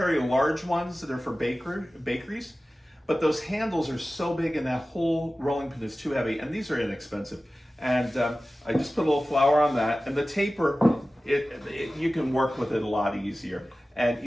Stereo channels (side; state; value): both; normal; correlation 0.96